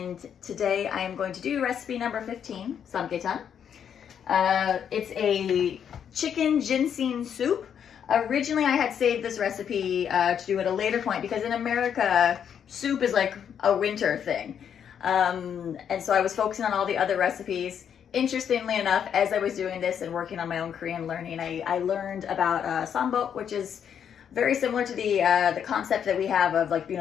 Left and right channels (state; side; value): quieter; right; 8.3 dB